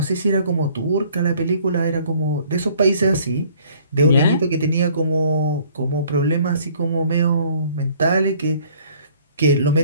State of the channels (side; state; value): both; inverted; correlation -0.57